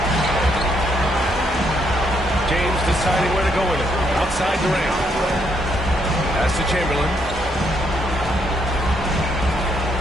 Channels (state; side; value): normal; both; correlation 0.74